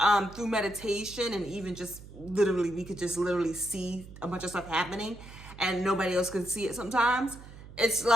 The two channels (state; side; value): noise; right; hum, 17 dB below the sound